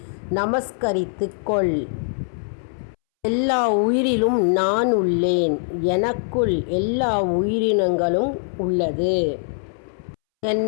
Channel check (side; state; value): right; silent; 64 dB below the other